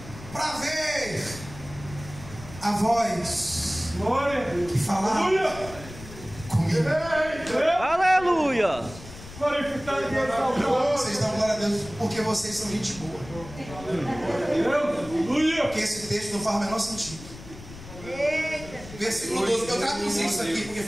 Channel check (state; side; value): noise; left; rumble, 15 dB below the sound